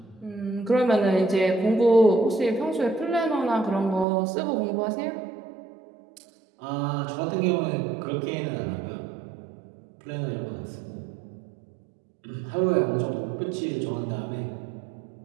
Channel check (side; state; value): left; drops out; at 4.0 s